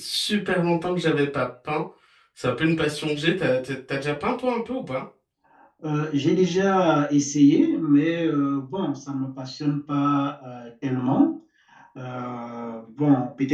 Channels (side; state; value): both; identical; correlation 1.00